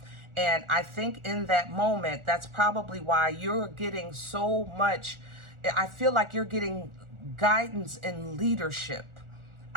And I think in that moment, that's probably why you're getting so much. I feel like you're getting guidance and leadership.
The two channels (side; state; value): left; late; 1.4 ms